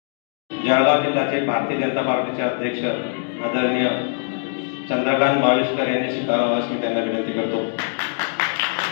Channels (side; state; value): right; silent; digital silence